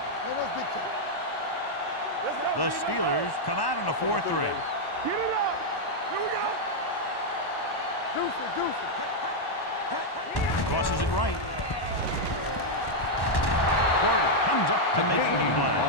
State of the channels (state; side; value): late; right; 1.1 ms